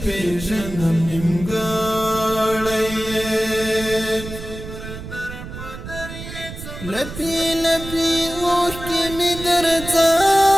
پېژنم نیمګړی یې لپې لپې اوښکې مې در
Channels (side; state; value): right; noise; rumble, 11 dB below the sound